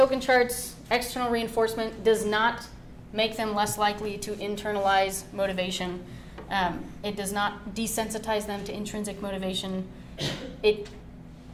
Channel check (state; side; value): identical; both; correlation 1.00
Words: charts, external reinforcement does not make them less likely to internalize motivation. It does not desensitize them to intrinsic motivation.